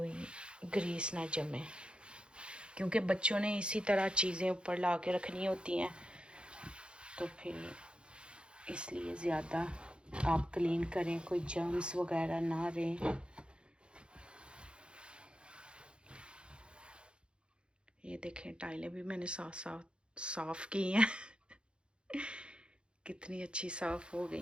ग्रीस ना जमे, क्योंकि बच्चों ने इसी तरह चीज़ें ऊपर ला के रखनी होती हैं, तो फिर इसलिए ज़्यादा आप क्लीन करें, कोई जर्म्स वगैरह ना रहें। ये देखें टाइलें भी मैंने साफ की हैं कितनी अच्छी साफ हो गई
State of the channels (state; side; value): late; left; 0.055 ms